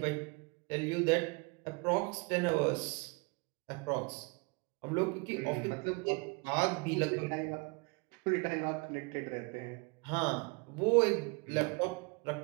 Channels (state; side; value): quieter; left; 28.9 dB